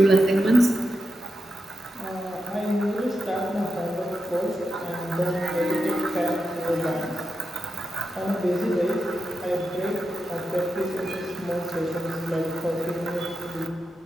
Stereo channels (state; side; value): normal; both; correlation 0.88